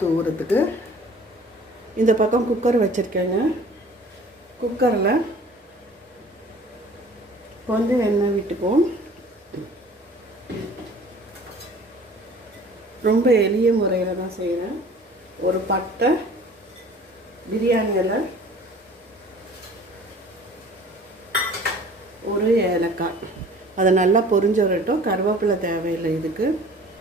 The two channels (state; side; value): normal; both; correlation 0.48